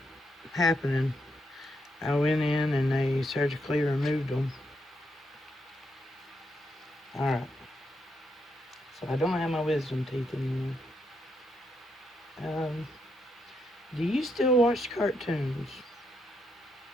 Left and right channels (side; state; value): both; normal; correlation 0.79